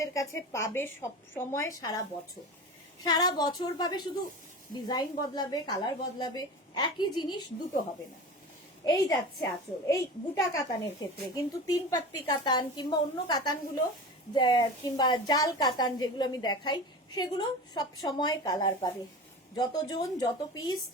কাছে পাবে সব সময়, সারা বছর, সারা বছর পাবে। শুধু ডিজাইন বদলাবে, কালার বদলাবে, একই জিনিস দুটো হবে না। এই যাচ্ছে আঁচল, এই বুটা কাতানের ক্ষেত্রে কিন্তু 3 পাত্তি কাতান কিংবা অন্য কাতানগুলো কিংবা জাল কাতান যেগুলো আমি দেখাই, সেগুলো সব সময় কালার পাবে, যতজন যত পিস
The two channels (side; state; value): both; normal; correlation 0.32